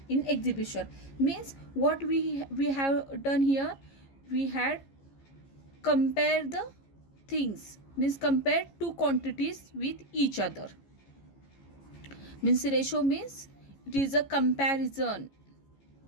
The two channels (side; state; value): right; late; 15 ms